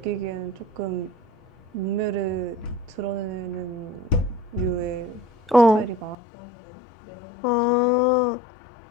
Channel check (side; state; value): right; drops out; at 6.2 s